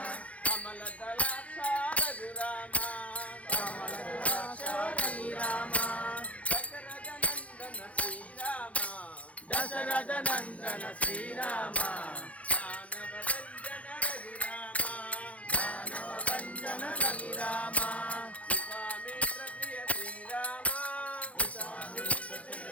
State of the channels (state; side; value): late; right; 0.065 ms